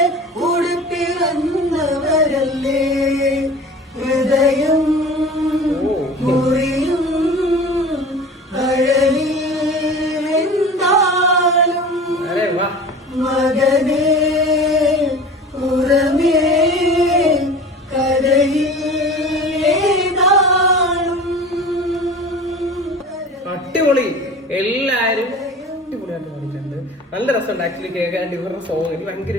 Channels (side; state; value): both; normal; correlation 0.38